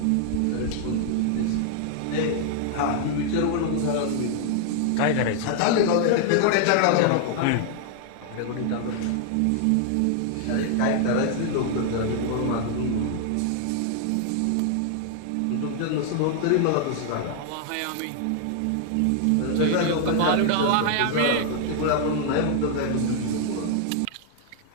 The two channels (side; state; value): both; different; correlation 0.00